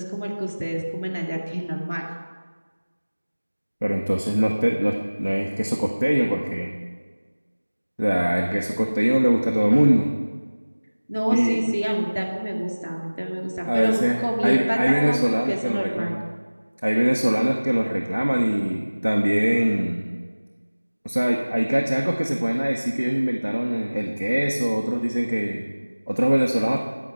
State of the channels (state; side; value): inverted; both; correlation -1.00